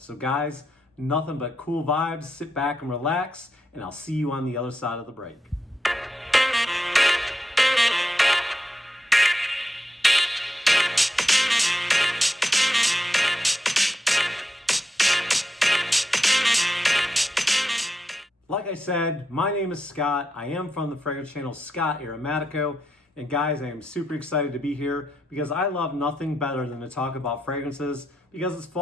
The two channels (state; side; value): normal; both; correlation 0.84